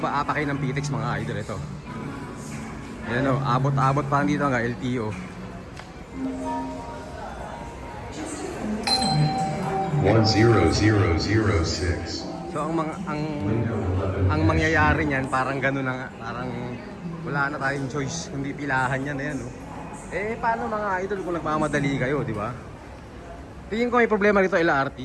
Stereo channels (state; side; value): identical; both; correlation 1.00